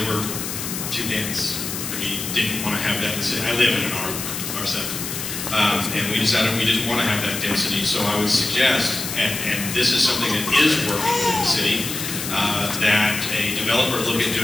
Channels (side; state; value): left; noise; hiss, 5 dB below the sound